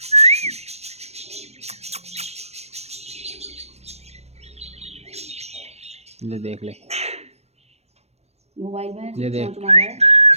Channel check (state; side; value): late; left; 0.31 ms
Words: ले देख ले। मोबाइल में ये देख। चोंच मारा है।